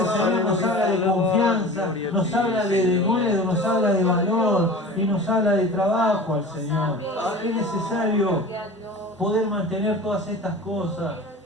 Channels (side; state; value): both; normal; correlation 0.37